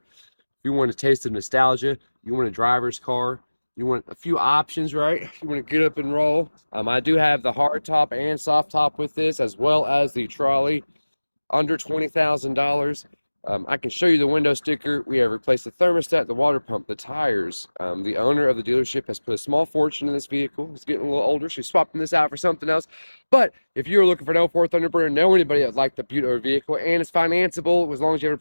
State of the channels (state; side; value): inverted; both; correlation -1.00